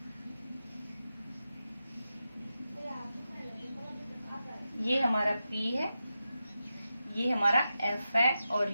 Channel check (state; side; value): inverted; both; correlation -0.90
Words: ये हमारा P है ये हमारा F है और